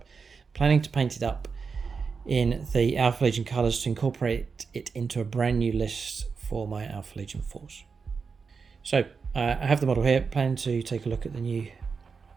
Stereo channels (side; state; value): left; quieter; 5.3 dB